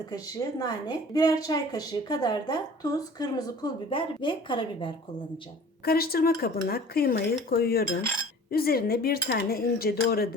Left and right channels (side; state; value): both; normal; correlation 0.46